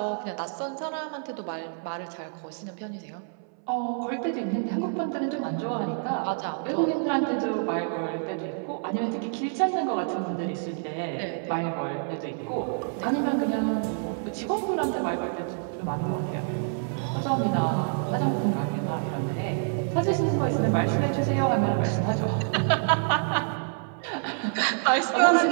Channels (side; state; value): left; silent; 60 dB below the other